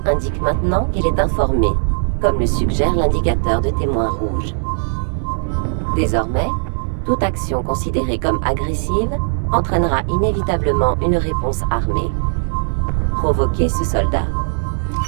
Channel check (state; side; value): silent; left; digital silence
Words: indique maintenant qu'il est informé, comme le suggère l'indicateur de témoin rouge. Désormais, toute action considérée comme agressive entraînera inévitablement une réponse armée. Provoquez ce soldat.